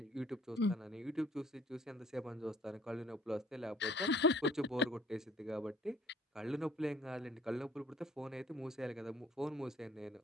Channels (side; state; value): both; normal; correlation 0.58